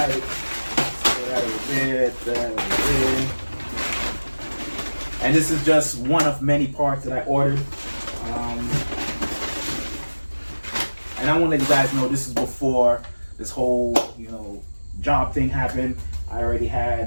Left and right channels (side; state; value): both; inverted; correlation -1.00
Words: And this is just one of many parts that I ordered. And I want to let you guys know, this is before this whole job thing happened. I already